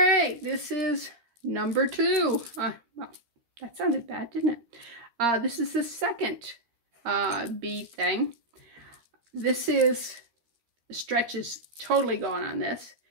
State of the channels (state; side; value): late; left; 13 ms